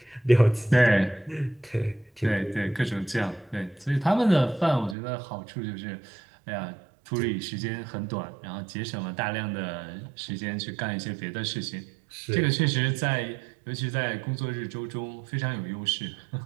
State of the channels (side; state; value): left; drops out; at 5.0 s